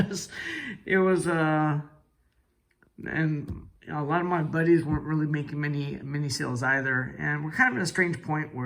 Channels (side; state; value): both; identical; correlation 1.00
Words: and a lot of my buddies weren't really making many sales either. And we're kind of in a strange point